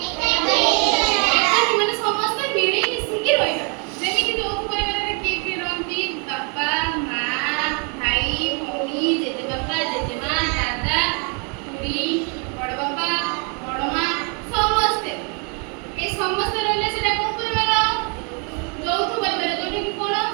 ଏକାଠି ମାନେ ସମସ୍ତେ ମିଳି ମିଶିକି ରହିବା। ଯେମିତି ଯୌଥ ପରିବାରରେ କିଏ କିଏ ରହନ୍ତି? ବାପା, ମା, ଭାଇ, ଭଉଣୀ, ଜେଜେବାପା, ଜେଜେମା, ଦାଦା, ଖୁଡୀ, ବଡ ବାପା, ବଡ ମା, ସମସ୍ତେ। ଏ ସମସ୍ତେ ରହିଲେ ସେଟା କୋଉ ପରିବାର? ଯୌଥ ପରିବାର। ଯୋଉଟା କି କଣ?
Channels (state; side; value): quieter; left; 36.1 dB